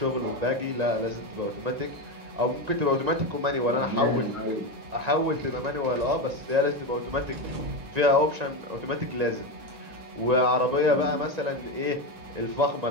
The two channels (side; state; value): left; late; 1.9 ms